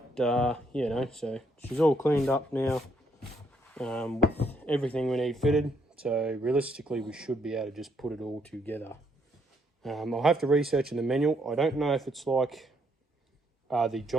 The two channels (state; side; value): normal; both; correlation 0.73